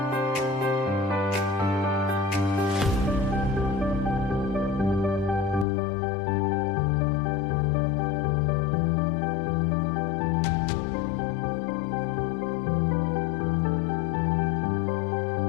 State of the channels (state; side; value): drops out; right; at 5.7 s